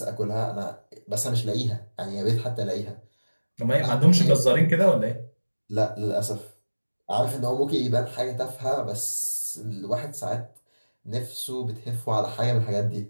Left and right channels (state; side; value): inverted; both; correlation -1.00